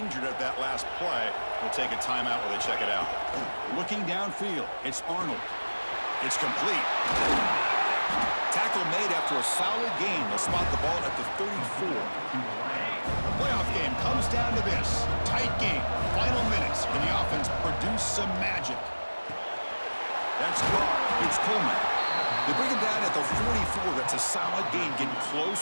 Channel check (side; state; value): both; inverted; correlation -1.00